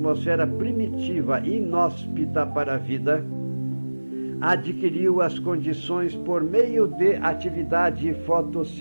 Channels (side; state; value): both; inverted; correlation -1.00